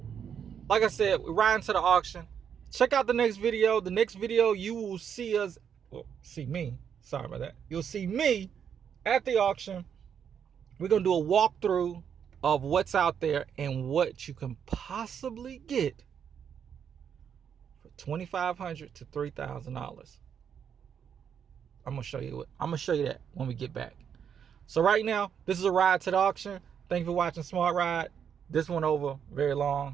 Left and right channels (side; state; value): left; quieter; 7.9 dB